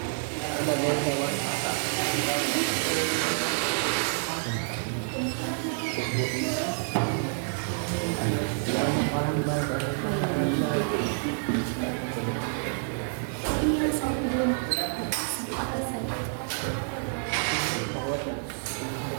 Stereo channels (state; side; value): silent; left; digital silence